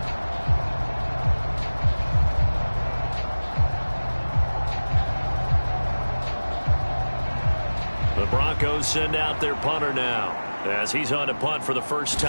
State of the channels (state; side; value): inverted; both; correlation -1.00